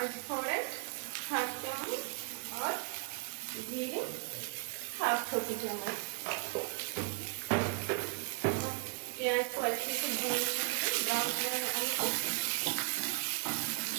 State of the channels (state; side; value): quieter; left; 33.4 dB